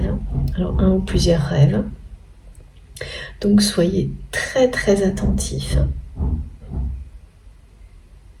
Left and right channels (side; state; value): both; identical; correlation 1.00